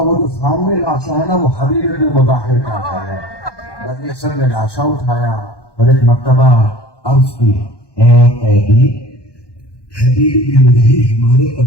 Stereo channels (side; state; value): right; late; 1.2 ms